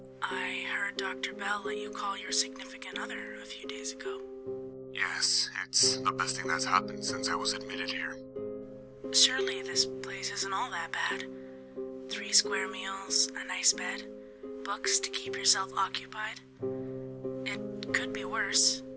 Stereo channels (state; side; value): identical; both; correlation 1.00